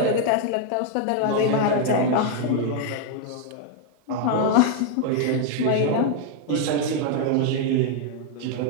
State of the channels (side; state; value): both; different; correlation 0.00